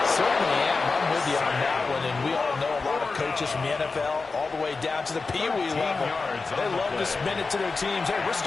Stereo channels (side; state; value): right; quieter; 4.1 dB